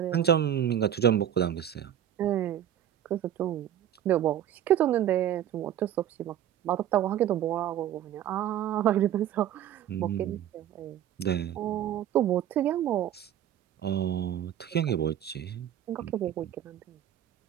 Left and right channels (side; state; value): left; quieter; 10.7 dB